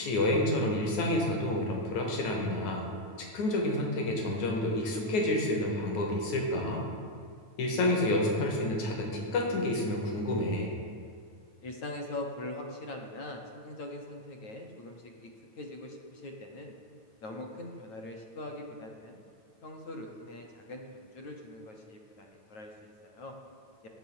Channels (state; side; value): late; right; 9.4 ms